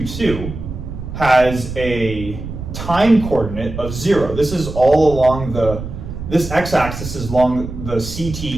has a time coordinate of 0. This is all along this x-axis is along the CT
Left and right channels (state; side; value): noise; right; rumble, 9 dB below the sound